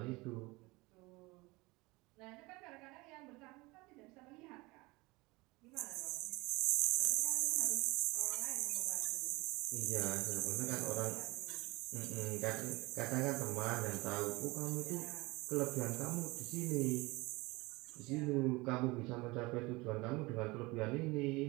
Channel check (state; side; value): quieter; left; 23.3 dB